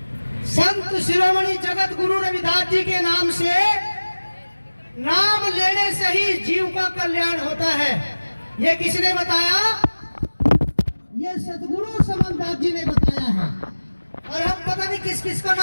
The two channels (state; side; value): inverted; both; correlation -1.00